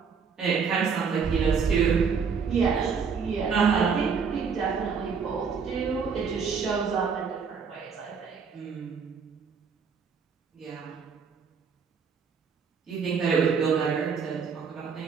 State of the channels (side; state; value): left; quieter; 5.9 dB